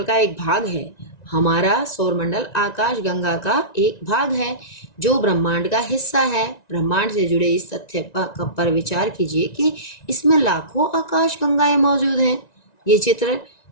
का एक भाग है, हमारा सौरमंडल आकाश गंगा का एक भाग है जो ब्रह्मांड का हिस्सा है। ब्रह्मांड से जुड़े इस तथ्य पर विचार कीजिए कि इसमें लाखों आकाश गंगाएं मौजूद हैं। ये चित्र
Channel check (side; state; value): right; late; 1.9 ms